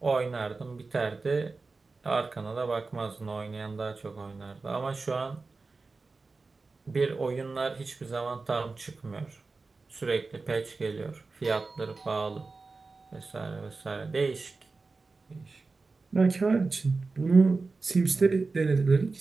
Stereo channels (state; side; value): quieter; left; 3.9 dB